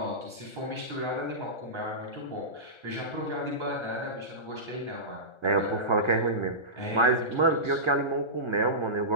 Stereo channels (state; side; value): late; left; 1.3 ms